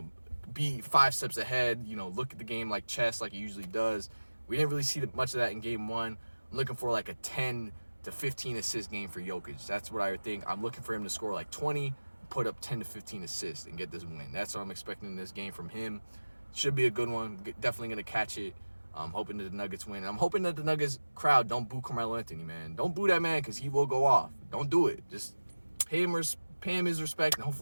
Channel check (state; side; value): inverted; both; correlation -1.00